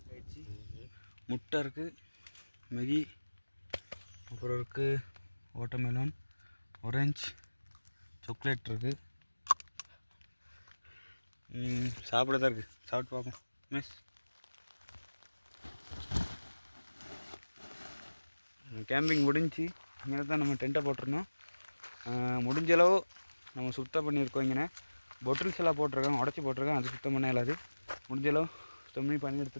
முட்டை இருக்குது, மேகி, அப்புறம் இருக்குது வாட்டர்மெலன், ஆரஞ்சு, சாக்லேட் இருக்குது. சாப்பிடத்தான் இருக்குது. சாப்பிட்டு பார்ப்போம். மிஸ் கேம்பிங் முடிஞ்சு இங்கே தான் நம்ம டென்ட்டை போட்டிருந்தோம். முடிஞ்ச அளவு நம்ம சுத்தம் பண்ணியிருக்கோம். இங்கே பொட்டில்ஸ் எல்லாம் போட்டிருக்காங்க, உடச்சி போட்டிருக்காங்க. அது சுத்தம் பண்ண இல்லாது முடிஞ்ச அளவு சுத்தம் பண்ணி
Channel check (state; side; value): inverted; both; correlation -1.00